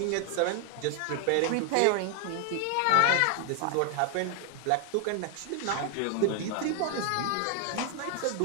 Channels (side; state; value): both; different; correlation 0.00